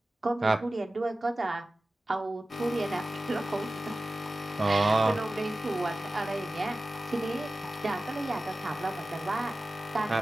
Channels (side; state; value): both; normal; correlation 0.95